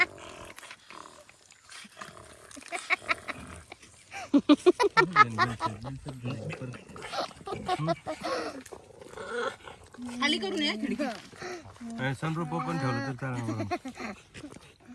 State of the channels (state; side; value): identical; both; correlation 1.00